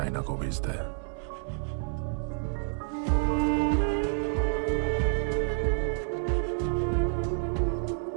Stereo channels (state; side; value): silent; left; 59 dB below the other